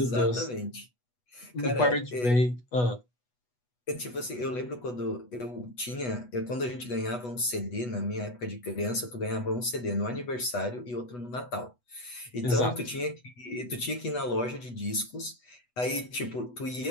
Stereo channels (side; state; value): right; late; 8.2 ms